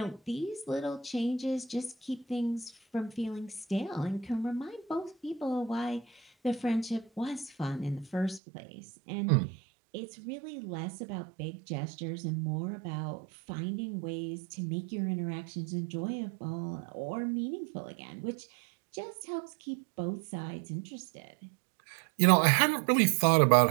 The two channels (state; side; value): drops out; left; at 8.4 s